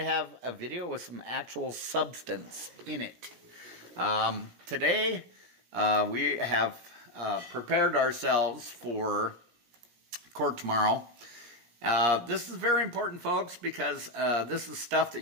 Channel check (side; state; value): left; late; 17 ms